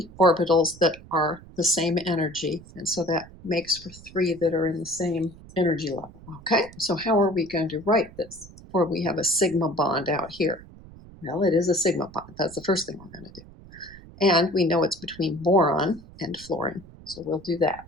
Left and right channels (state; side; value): noise; right; rumble, 20 dB below the sound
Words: orbitals that are the same energy, and so that makes for 3 that are in the same energy level. Okay, so how are we going to write this? Or we have a sigma bond out here. Well, it is a sigma bond. That's the first thing we're going to do. And we know it's between boron and fluorine, so we'll do that.